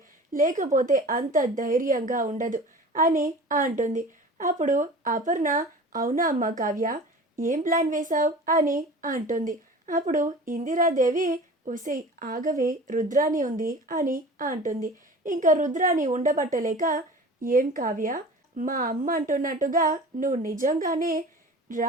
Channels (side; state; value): both; normal; correlation 0.39